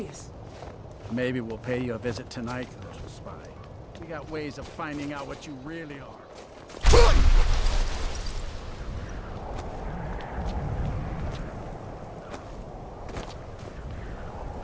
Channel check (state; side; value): identical; both; correlation 1.00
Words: Maybe we'll pay you a visit tonight, little spy. We got ways of finding out what you really are.